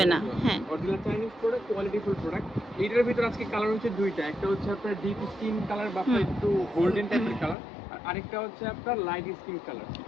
না। হ্যাঁ, original Chinese product, quality full product. এইটার ভিতর আজকে কালার হচ্ছে দুইটা, একটা হচ্ছে আপনার ডিপ স্কিন কালার বা আপনার একটু গোল্ডেন টাইপের কালার, আর আরেকটা হচ্ছে আপনার লাইট স্কিন কালার।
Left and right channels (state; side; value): drops out; right; at 7.6 s